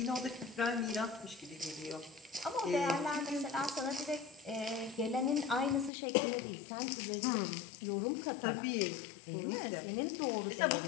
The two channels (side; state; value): right; drops out; at 5.9 s